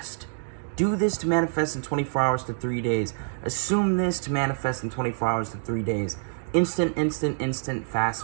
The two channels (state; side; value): silent; left; digital silence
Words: Do this to manifest in 24 hours to 3 days. Assume this to manifest in 24 hours to 3 days. Instant, fast,